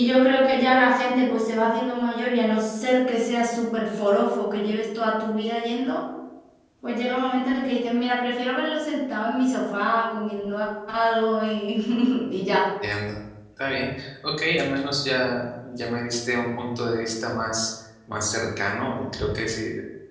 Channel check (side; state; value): both; identical; correlation 1.00